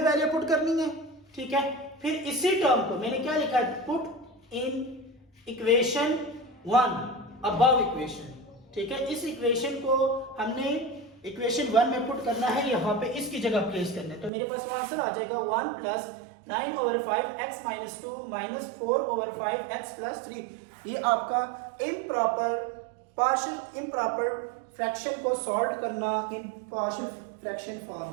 वैल्यू पुट करनी है, ठीक है। फिर इसी टर्म को मैंने क्या लिखा है, put in equation 1 above equation, ठीक है। इस इक्वेशन को हमने इक्वेशन 1 में पुट करना है, यहाँ पे इसकी जगह प्लेस करना है, तो मेरे पास आंसर आ जाएगा 1 प्लस 9/5x-2 -4/5x+3। ये आपका इम्प्रॉपर फ्रैक्शन को सॉल्व करना इन पार्शियल फ्रैक्शन फॉर्म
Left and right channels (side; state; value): left; drops out; at 14.3 s